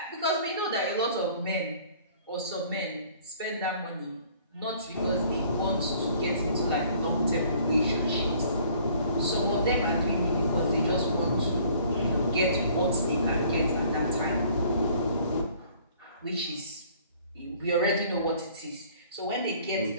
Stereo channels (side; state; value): both; inverted; correlation -0.56